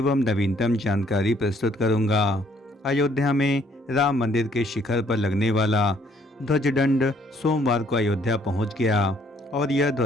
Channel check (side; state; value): both; normal; correlation 0.64